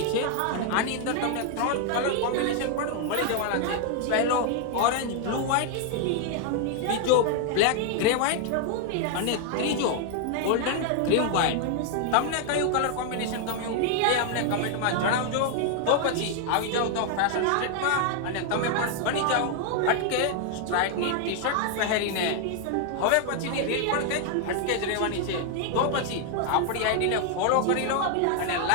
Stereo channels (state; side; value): different; both; correlation 0.00